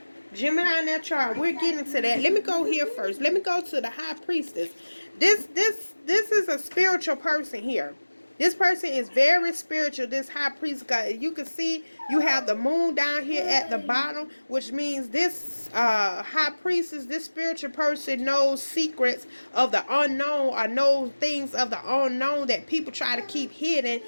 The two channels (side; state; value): both; inverted; correlation -1.00